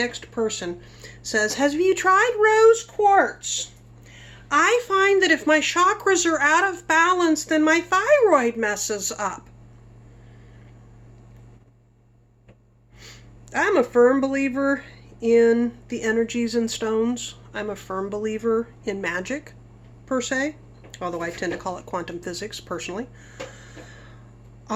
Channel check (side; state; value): both; identical; correlation 1.00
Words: person says, have you tried rose quartz? I find that if my chakras are out of balance, then my thyroid messes up. I'm a firm believer in the energies in stones. I'm a firm believer in magic, per se, although I tend to call it quantum physics, personally.